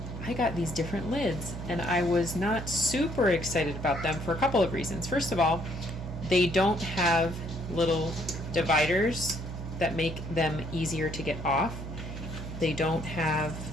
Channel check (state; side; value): noise; right; hum, 8 dB below the sound